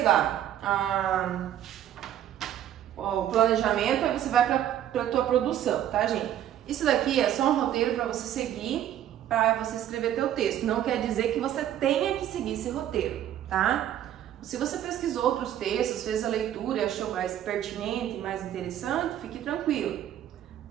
lá o planejamento, aí você vai para a tua produção, tá, gente? Isso daqui é só um roteiro para você seguir, para você escrever teu texto. Não quer dizer que você tenha que seguir esse roteiro, tá? Se você pesquisou outros textos, fez a leitura e achou mais pertinente, mais interessante, fique tranquilo,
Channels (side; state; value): left; quieter; 11.3 dB